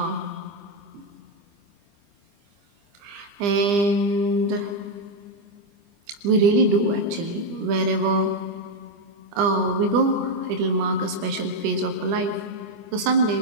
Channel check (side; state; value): left; late; 25 ms